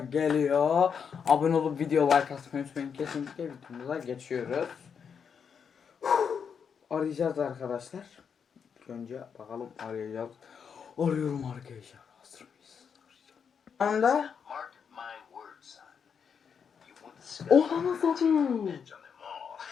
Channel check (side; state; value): right; quieter; 6.8 dB